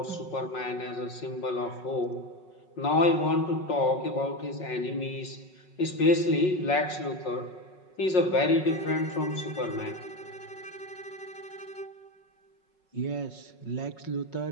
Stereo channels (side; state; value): right; late; 5.4 ms